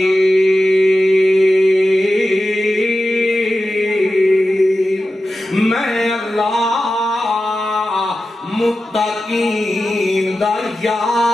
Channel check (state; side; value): normal; both; correlation 0.93